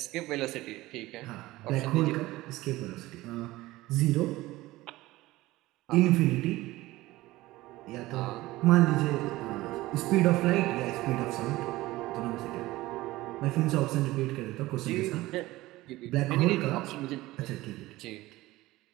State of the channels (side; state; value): left; quieter; 18.3 dB